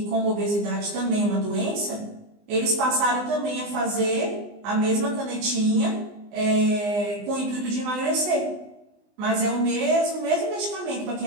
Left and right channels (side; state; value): left; late; 19 ms